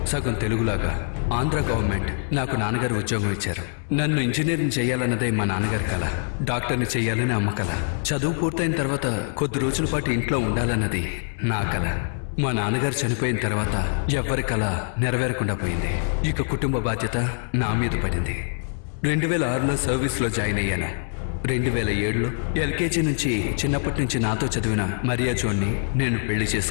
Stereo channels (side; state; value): right; silent; digital silence